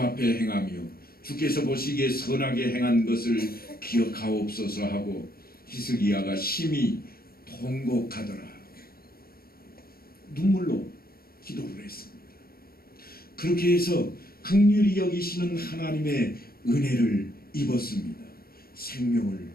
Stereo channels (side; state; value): right; late; 0.44 ms